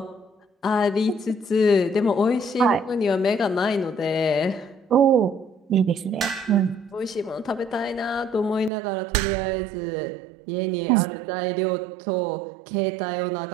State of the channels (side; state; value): left; drops out; at 8.7 s